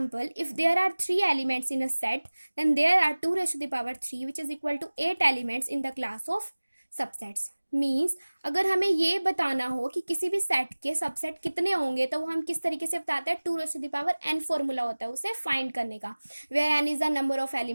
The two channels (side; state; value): both; inverted; correlation -1.00